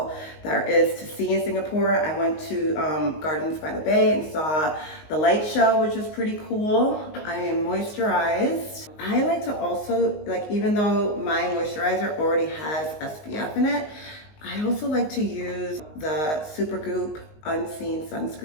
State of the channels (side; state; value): right; late; 19 ms